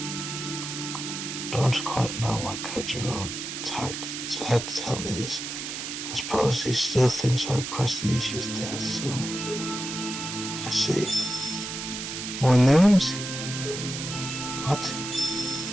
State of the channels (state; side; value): noise; right; hiss, 6 dB below the sound